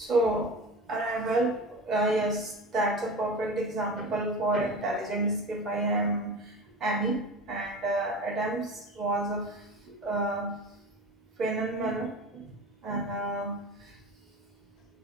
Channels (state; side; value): normal; both; correlation 0.31